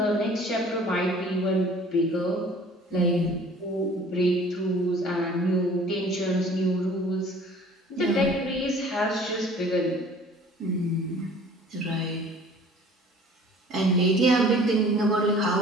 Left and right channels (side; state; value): both; normal; correlation 0.50